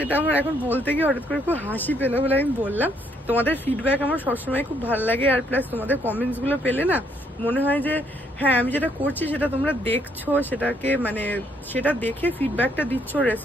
আমার এখন বলতে গিয়ে হঠাৎ করে খুব হাসি পেলো বলে আমি বললাম। তোমাদের ফিডব্যাক আমার সবসময় খুব ভালো লাগে, আর প্লাস তোমাদের কমেন্টস গুলো পেলে না মনে হয় যে হ্যাঁ আমি যেটা করছি সেটা তোমরা দেখছো, সেটাকে মানে সেটা দেখে ফিডব্যাকটা দিচ্ছ,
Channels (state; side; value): normal; both; correlation 0.70